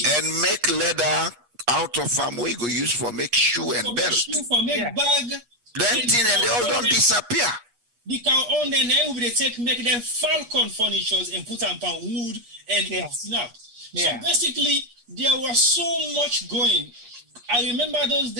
make leather out of farm we go use for make shoe and belt. For make bag. Then and they all don't disappear. The cow on then we make them falcon furnitures and put them on wood and snap. So basically there was so much going. I remember those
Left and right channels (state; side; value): late; left; 8.4 ms